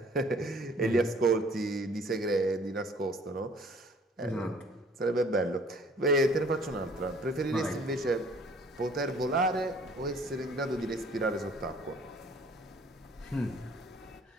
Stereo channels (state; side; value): normal; both; correlation 0.55